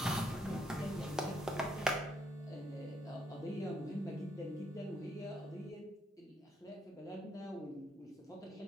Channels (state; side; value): normal; both; correlation 0.73